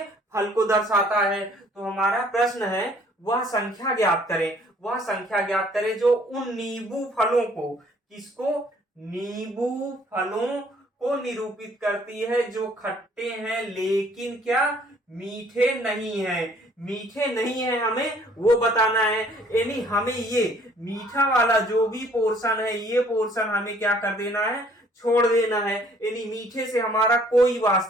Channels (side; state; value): both; normal; correlation 0.59